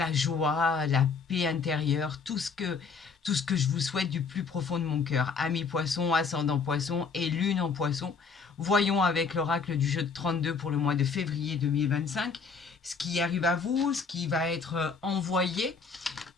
joie, la paix intérieure, tout ce que je vous souhaite du plus profond de mon cœur. Amis poisson, ascendant poisson et lune en poisson. Voyons avec l'oracle du jeu de 32 pour le mois de février 2025 ce qui arrive à vous, ce qui va être envoyé.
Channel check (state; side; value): quieter; right; 5.1 dB